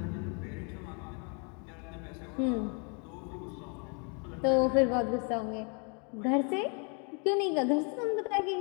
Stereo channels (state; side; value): quieter; right; 36.4 dB